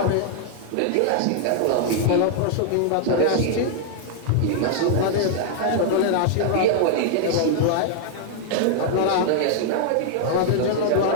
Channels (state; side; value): different; both; correlation 0.00